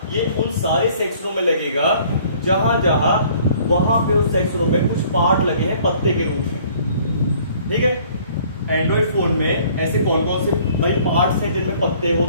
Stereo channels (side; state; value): both; inverted; correlation -0.56